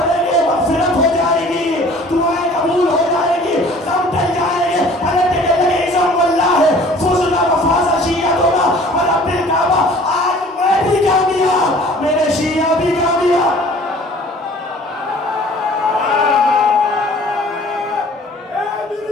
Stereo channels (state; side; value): normal; both; correlation 0.50